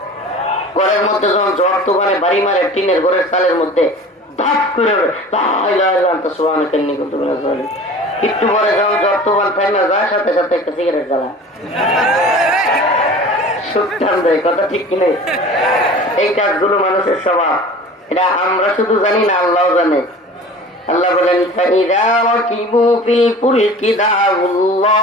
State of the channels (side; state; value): both; normal; correlation 0.41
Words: ঘরের মধ্যে যখন জ্বর তুফানে বাড়ি মারে টিনের ঘরের চালের মধ্যে ধাপ করে লা ইলাহা ইল্লা আনতা সুবহানাকা ইন্নী কুনতু মিনাজ জালিমিন। একটু পরে যখন জ্বর তুফান থামে যায়, সাথে সাথে একটা সিগারেট জ্বালা সুখ টান দেয়। কথা ঠিক কিনা? এই কাজগুলো মানুষের স্বভাব। এটা আমরা শুধু জানি না, আল্লাহ জানে। আল্লাহ বলেন ফাইযা রাকিবু ফিল ফুলকি